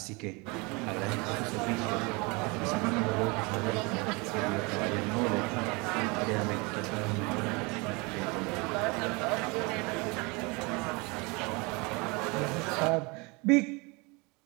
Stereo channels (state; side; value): quieter; left; 27.8 dB